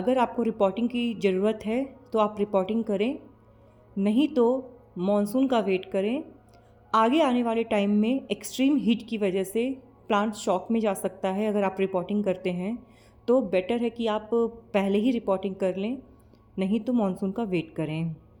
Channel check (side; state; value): both; identical; correlation 1.00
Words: आपको रिपोर्टिंग की ज़रूरत है तो आप रिपोर्टिंग करें, नहीं तो मॉनसून का वेट करें। आगे आने वाले टाइम में एक्सट्रीम हीट की वजह से प्लांट शॉक में जा सकता है। अगर आप रिपोर्टिंग करते हैं तो बेटर है कि आप पहले ही रिपोर्टिंग कर लें, नहीं तो मॉनसून का वेट करें।